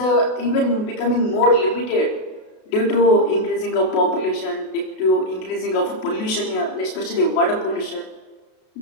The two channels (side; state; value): right; late; 32 ms